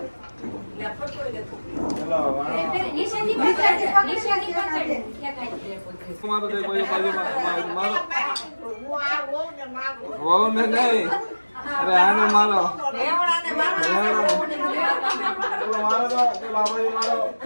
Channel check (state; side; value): inverted; both; correlation -1.00